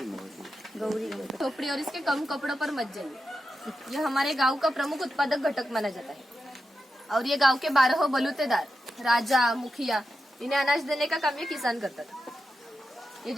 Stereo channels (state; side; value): normal; both; correlation 0.89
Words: खोपड़ी और इसके कम कपड़ों पर मत जाइए। यह हमारे गांव का प्रमुख उत्पादक घटक माना जाता है। और ये गांव के 12 बलूतेदार, राजा, मुखिया इन्हें अनाज देने का काम ये किसान करता था। ये